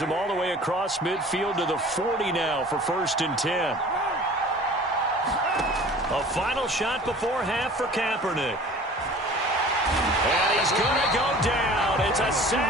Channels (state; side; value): normal; both; correlation 0.45